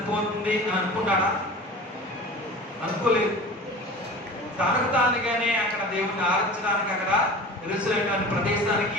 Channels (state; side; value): normal; both; correlation 0.37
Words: అని అనుకుంటాడా? అనుకోలేదు. తనకు తానుగానే అక్కడ దేవుడిని ఆరాధించడానికి అక్కడ ఎరుసలేము ప్రదేశానికి